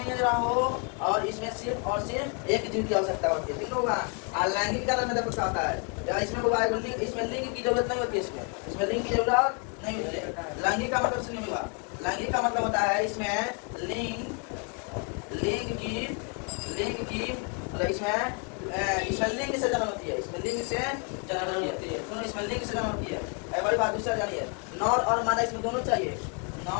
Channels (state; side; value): quieter; right; 36.5 dB